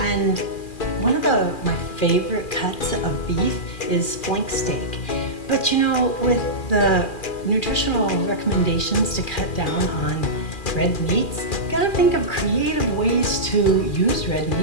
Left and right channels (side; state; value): right; late; 2.4 ms